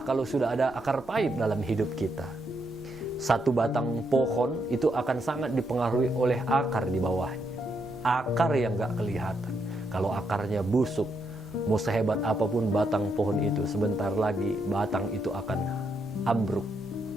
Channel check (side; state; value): right; noise; rumble, 25 dB below the sound